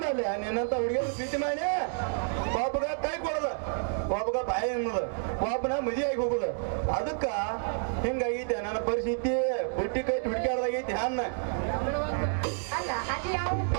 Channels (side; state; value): left; silent; 58 dB below the other